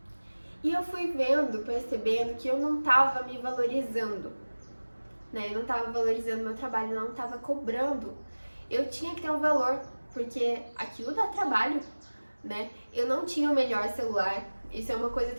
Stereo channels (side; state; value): both; inverted; correlation -1.00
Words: E eu fui percebendo que eu não tava me valorizando, né? Eu não tava valorizando meu trabalho, eu não tava cobrando. Eu tinha que ter um valor, porque aquilo dá trabalho, né? Eu não tinha o melhor celular. Isso é uma coisa